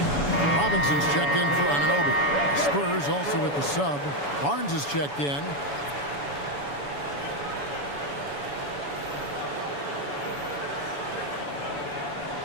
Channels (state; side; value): late; right; 7.0 ms